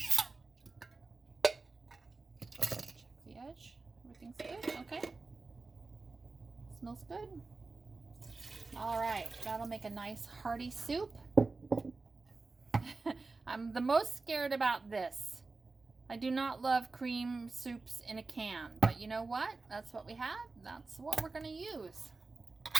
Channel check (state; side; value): quieter; left; 3.8 dB